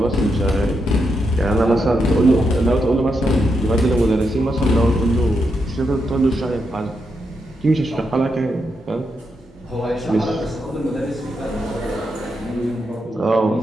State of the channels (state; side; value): normal; both; correlation 0.83